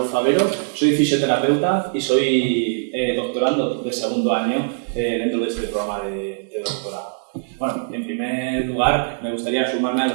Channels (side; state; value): left; silent; digital silence